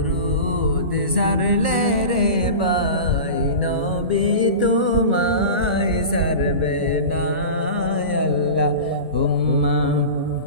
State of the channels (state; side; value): inverted; both; correlation -0.31